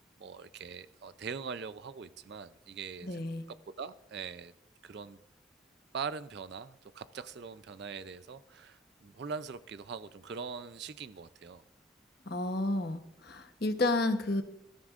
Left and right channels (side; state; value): both; normal; correlation 0.41